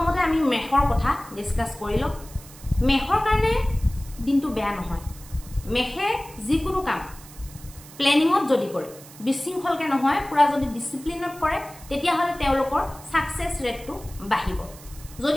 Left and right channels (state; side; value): noise; right; hiss, 19 dB below the sound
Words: আমি মেষৰ কথা ডিসকাস কৰি লওঁ। মেষৰ কাৰণে দিনটো বেয়া নহয়। মেষে যিকোনো কাম প্লেনিঙত যদি কৰে, বিশৃংখলকে নহয়, পুৰা যদি ডিসিপ্লিনত কৰে, তেতিয়াহ'লে তেওঁলোকৰ সাকসেস ৰেটটো বাঢ়িব।